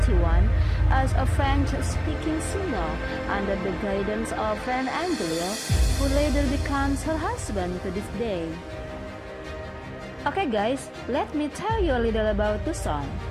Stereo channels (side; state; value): both; identical; correlation 1.00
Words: as a French-speaking singer under the guidance of Fran Angelier, who later becomes her husband to this day. Okay guys, let me tell you a little about the song.